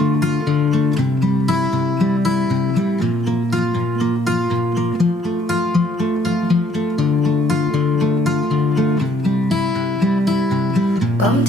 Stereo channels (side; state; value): both; normal; correlation 0.66